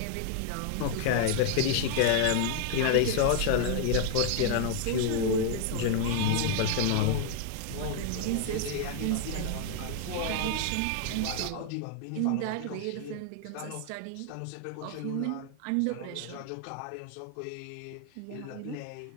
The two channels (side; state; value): both; different; correlation 0.00